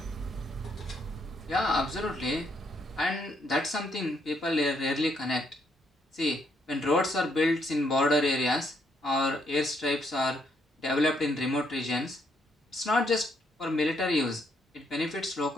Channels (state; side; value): normal; both; correlation 0.73